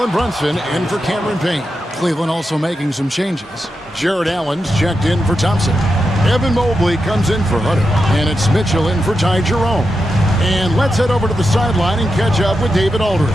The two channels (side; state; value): both; normal; correlation 0.88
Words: Brunson in for Cameron Payne. Cleveland also making some changes. Jared Allen's checked in for Thompson. Evan Mobley comes in for Hunter. And it's Mitchell in for Ty Jerome. And let's head over to the sideline and catch up with David Aldridge.